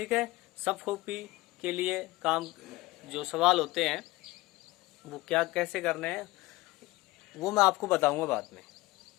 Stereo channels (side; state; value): right; quieter; 20.0 dB